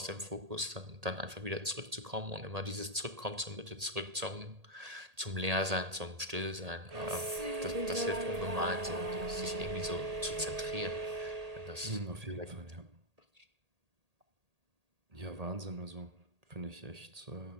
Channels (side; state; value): left; late; 1.8 ms